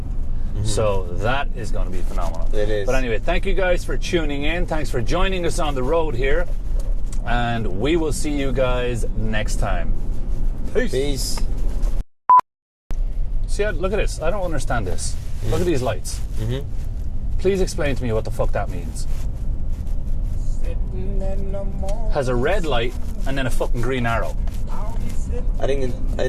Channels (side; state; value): both; identical; correlation 1.00